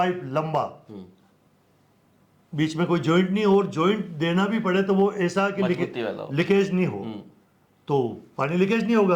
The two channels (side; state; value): both; identical; correlation 1.00